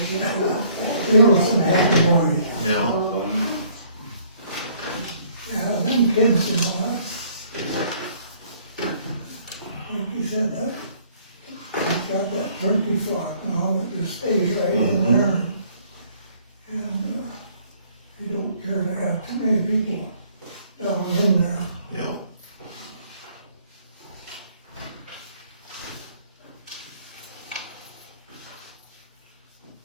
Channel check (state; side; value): inverted; both; correlation -0.61